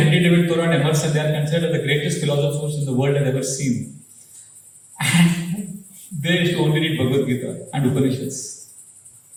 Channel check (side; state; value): both; identical; correlation 1.00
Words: David Thoreau and Emerson, they are considered the greatest philosophers in the world has ever seen. And they used to only read Bhagavad Gita and Upanishads.